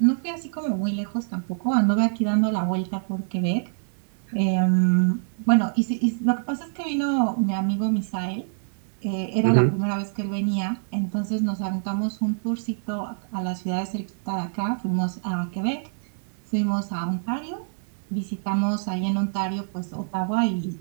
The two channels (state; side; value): silent; left; 61 dB below the other